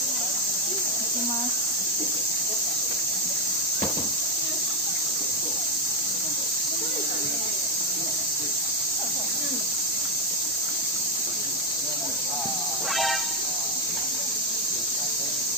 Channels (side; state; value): both; normal; correlation 0.04